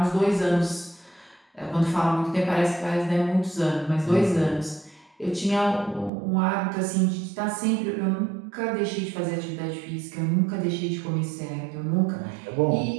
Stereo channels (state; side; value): drops out; left; at 6.1 s